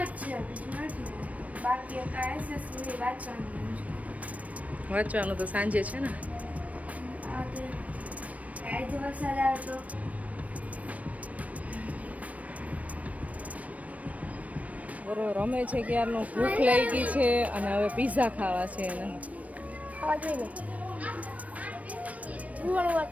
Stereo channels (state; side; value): late; left; 0.068 ms